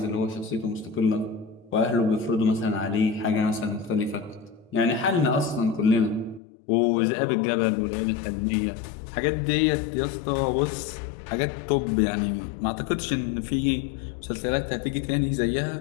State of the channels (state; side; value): drops out; right; at 6.4 s